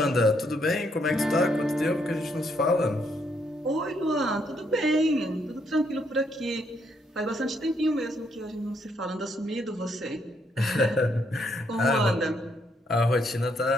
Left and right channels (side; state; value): both; normal; correlation 0.73